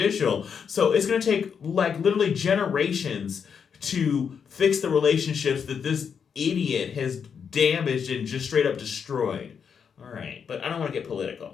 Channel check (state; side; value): quieter; right; 6.8 dB